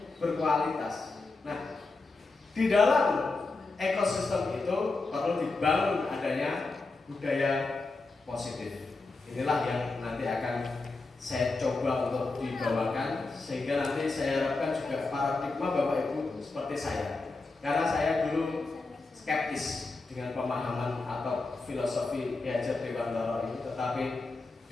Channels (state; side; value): quieter; right; 3.6 dB